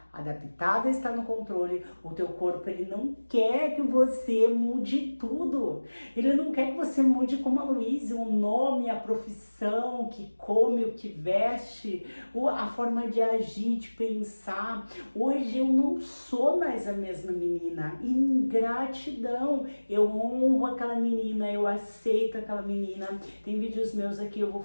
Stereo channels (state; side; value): inverted; both; correlation -1.00